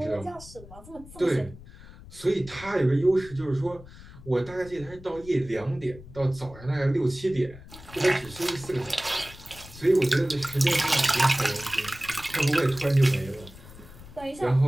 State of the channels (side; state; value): left; noise; rumble, 18 dB below the sound